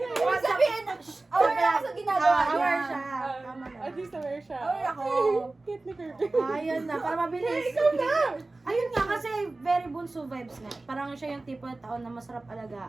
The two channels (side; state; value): left; quieter; 3.1 dB